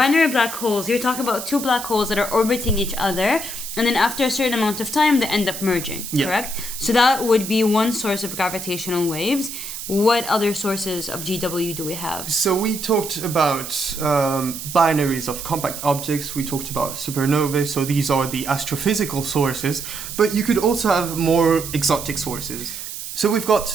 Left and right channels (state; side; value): noise; right; hiss, 8 dB below the sound